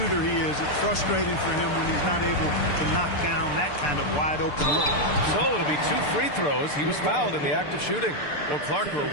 he is. It's frustrating for him when he's not able to knock down that kind of wide open look. So it'll be 2 free throws. He was fouled in the act of shooting. Well, Clark, we're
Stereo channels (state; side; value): late; right; 6.8 ms